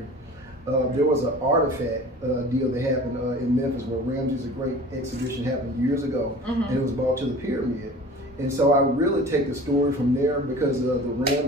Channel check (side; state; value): both; normal; correlation 0.41